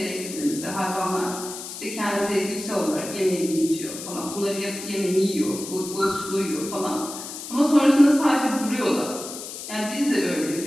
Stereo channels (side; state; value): left; noise; hiss, 10 dB below the sound